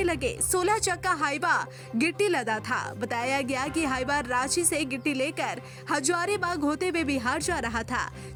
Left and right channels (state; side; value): identical; both; correlation 1.00